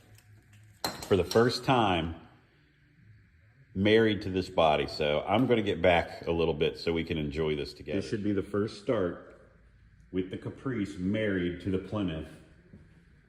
the first time married to this body. So I'm going to get back a little bit so we can enjoy this together. This should be the first start with the Caprice married to the Plymouth.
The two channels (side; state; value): both; identical; correlation 1.00